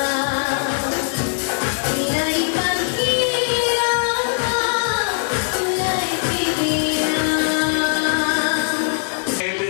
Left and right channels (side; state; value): right; silent; digital silence